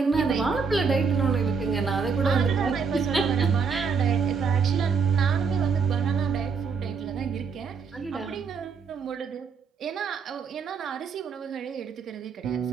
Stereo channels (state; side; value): quieter; left; 5.5 dB